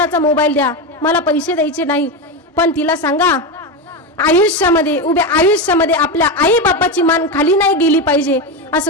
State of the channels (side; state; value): both; normal; correlation 0.14